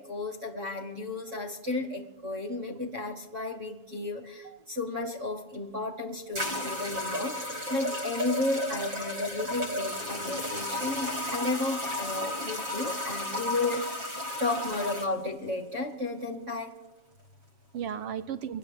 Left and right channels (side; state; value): left; late; 7.2 ms